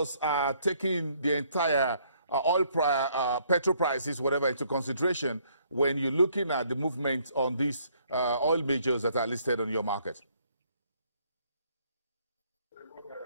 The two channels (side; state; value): both; inverted; correlation -0.66